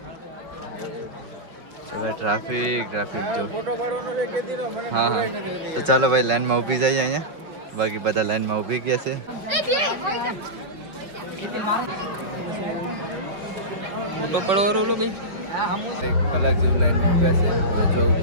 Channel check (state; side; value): late; left; 5.6 ms